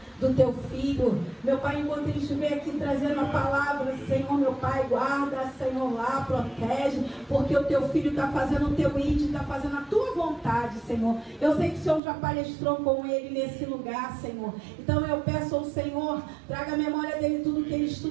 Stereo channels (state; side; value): drops out; left; at 12.0 s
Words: do teu filho. Meu Pai, enquanto ele estiver aqui trazendo a palavra, Senhor, meu Pai, guarda, Senhor, lá, protege, porque o teu filho está fazendo o teu íntimo, está fazendo a tua vontade, Senhor. Eu sei que o Senhor já palestrou com ele nesse lugar, Senhor. Então eu peço ao Senhor, traga a memória dele tudo que ele